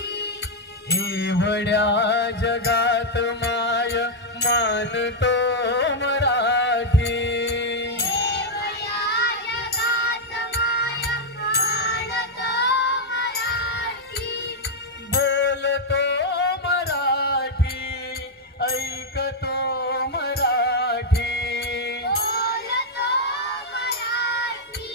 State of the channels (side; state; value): both; normal; correlation -0.02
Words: एवढ्या जगात माय मानतो मराठी. बोलतो मराठी, ऐकतो मराठी.